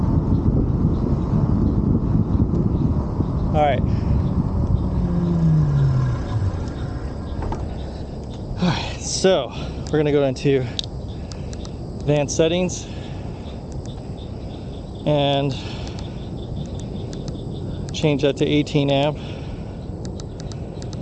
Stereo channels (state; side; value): identical; both; correlation 1.00